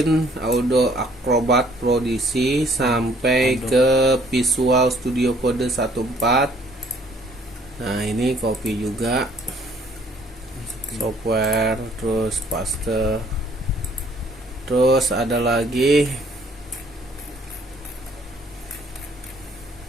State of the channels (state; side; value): normal; both; correlation 0.60